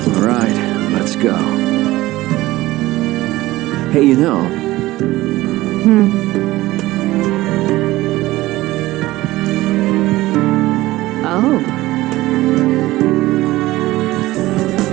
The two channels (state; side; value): quieter; left; 17.7 dB